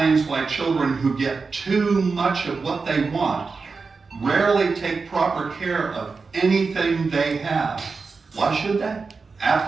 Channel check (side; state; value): left; quieter; 4.6 dB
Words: why children who get too much of what they want rarely take proper care of anything they have. Why should they?